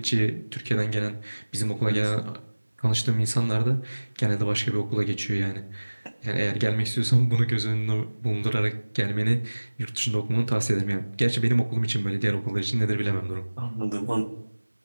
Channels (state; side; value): inverted; both; correlation -1.00